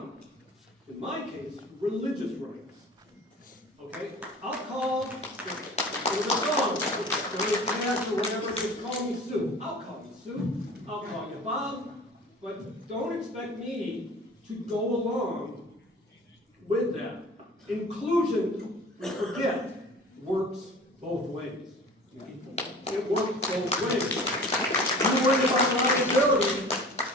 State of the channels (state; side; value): normal; both; correlation 0.43